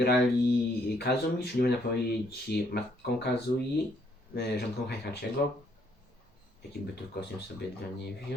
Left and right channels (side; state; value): both; normal; correlation 0.69